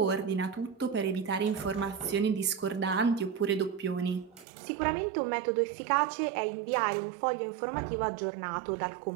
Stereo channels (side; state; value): left; drops out; at 4.5 s